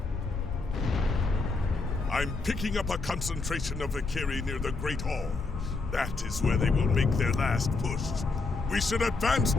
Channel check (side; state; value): right; quieter; 3.8 dB